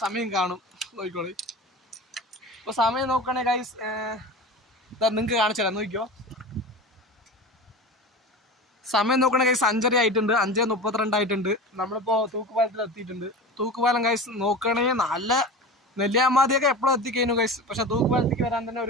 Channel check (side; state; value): both; normal; correlation 0.31